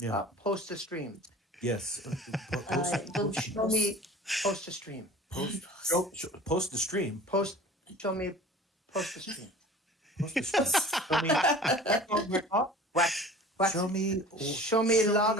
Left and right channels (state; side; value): normal; both; correlation 0.43